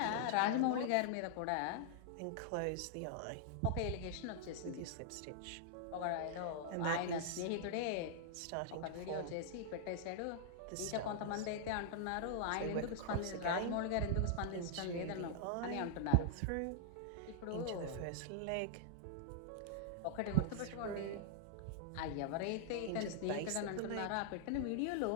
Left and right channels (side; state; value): both; different; correlation -0.01